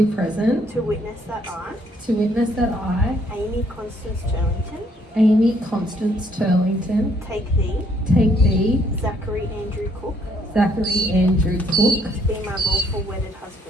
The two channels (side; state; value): both; normal; correlation 0.67